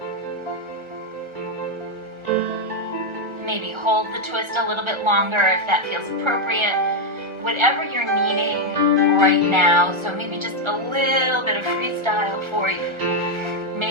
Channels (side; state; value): left; late; 1.3 ms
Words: Maybe hold the twist a little bit longer if that feels appropriate. Whatever you're needing right now, so maybe just a little bit of freestyle for you.